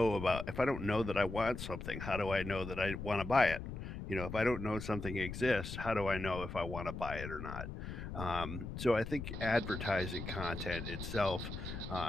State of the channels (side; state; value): left; noise; rumble, 7 dB below the sound